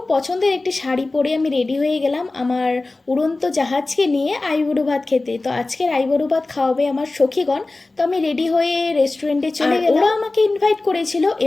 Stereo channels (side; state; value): right; quieter; 3.2 dB